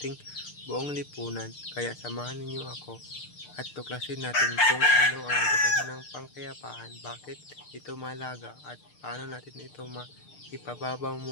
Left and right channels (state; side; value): late; right; 6.7 ms